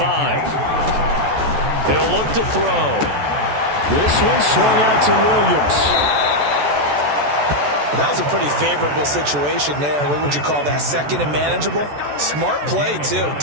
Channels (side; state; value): left; late; 14 ms